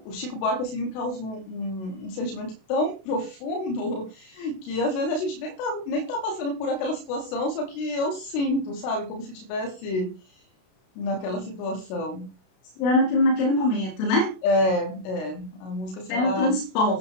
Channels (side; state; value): right; late; 32 ms